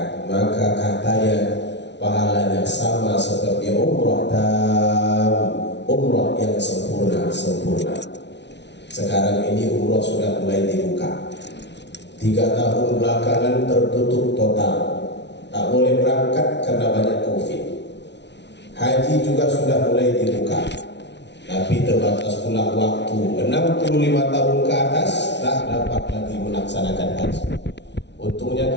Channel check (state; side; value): late; right; 0.50 ms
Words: maka katanya pahalanya sama seperti umrah umrah yang sempurna. Sekarang ini umrah sudah mulai dibuka. 3 tahun belakangan tertutup total, tak boleh berangkat karena banyak COVID. Haji juga sudah mulai dibuka, tapi terbatas pula waktu. 65 tahun ke atas tak dapat lagi melaksanakan haji.